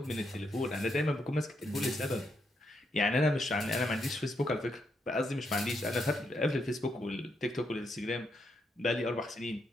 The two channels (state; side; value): normal; both; correlation 0.79